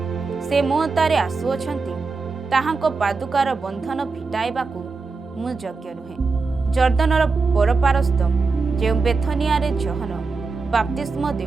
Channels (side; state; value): left; quieter; 4.2 dB